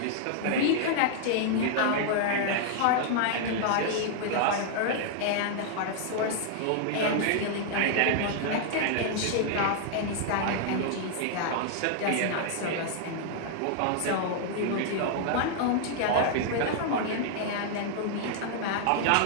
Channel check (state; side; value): different; both; correlation -0.01